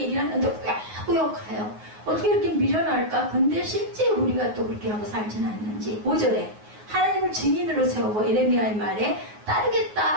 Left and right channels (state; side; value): late; left; 9.5 ms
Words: 하는데 꾸역꾸역 가요. 어떻게 이렇게 미련할까? 근데 실제 우리가 또 그렇게 하고 살지는 않는지. 5절에 하나님을 증인으로 세우고 예레미야의 말에